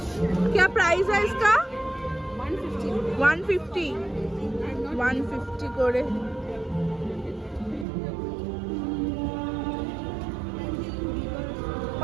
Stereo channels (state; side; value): drops out; left; at 7.9 s